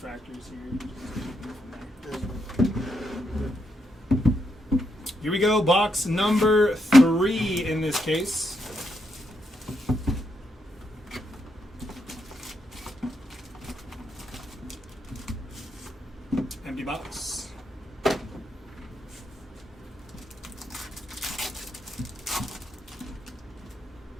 here. Here we go. Box number 3 in this case. Empty box.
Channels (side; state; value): both; normal; correlation 0.80